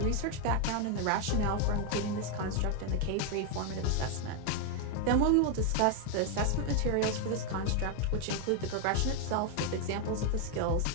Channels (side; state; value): both; different; correlation 0.01